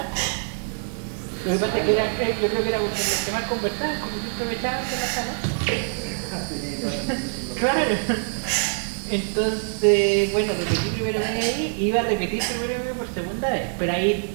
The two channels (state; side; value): silent; left; digital silence